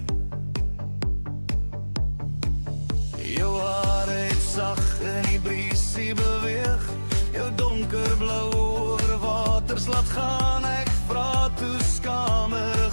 Jou hare het sag in die briesie beweeg, jou donkerblou oorwaters laat gaan. Ek vra toe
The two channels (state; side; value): inverted; both; correlation -1.00